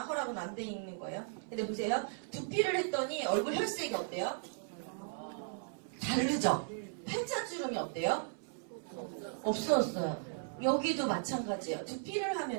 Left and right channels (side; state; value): left; silent; 53 dB below the other